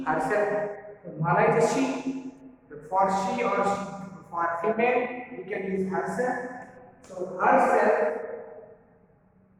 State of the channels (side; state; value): both; identical; correlation 1.00